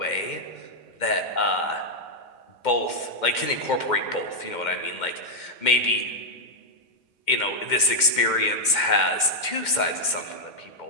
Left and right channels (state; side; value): late; right; 2.1 ms